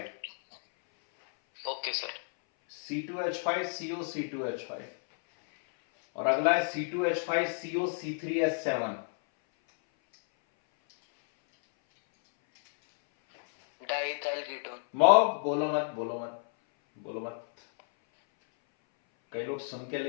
okay sir, C2H5 CO C2H5, और अगला है C2H5 CO C3H7। Diethyl ketone. बोलो मत बोलो मत बोलो मत, कई लोग सुन के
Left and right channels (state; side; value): silent; right; 57 dB below the other